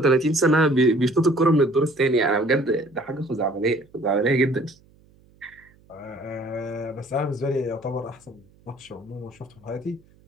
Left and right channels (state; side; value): noise; right; hum, 30 dB below the sound